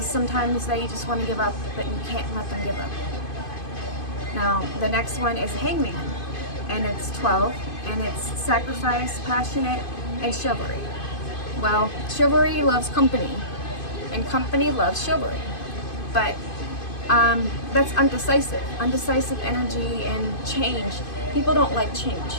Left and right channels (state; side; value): late; right; 2.5 ms